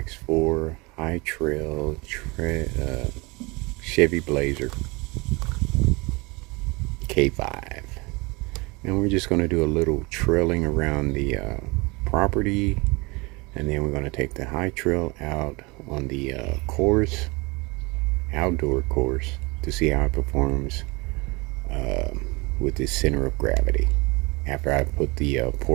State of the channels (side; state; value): left; quieter; 26.0 dB